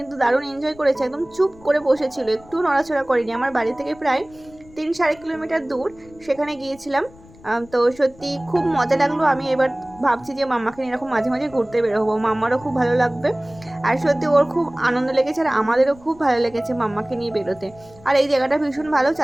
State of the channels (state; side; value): noise; left; rumble, 24 dB below the sound